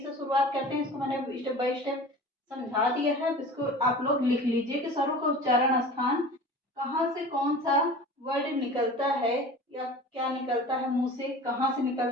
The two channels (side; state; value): both; normal; correlation 0.38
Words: शुरुआत करते हैं। इसको मैंने स्टेप बाय स्टेप समझा दिया है। इसको आप लोग लिख लीजिए कि स्वरों का उच्चारण स्थान कहाँ से कौन सा वर्ड निकलता है या क्या निकलता है, मुंह से कहाँ से